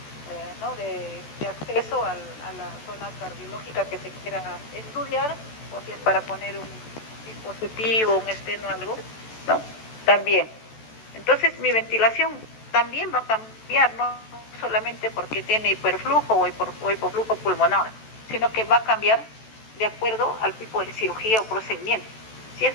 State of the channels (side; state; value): right; late; 14 ms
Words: acceso a la zona cardiológica que se quiera estudiar, o si es para poner un dispositivo, un esteno, algo, ¿no? También. Entonces mi ventilación también va a cambiar, no solamente porque tiene hiperflujo o hipoflujo pulmonar, sino que va a cambiar de acuerdo al tipo de cirugía o procedimiento. Si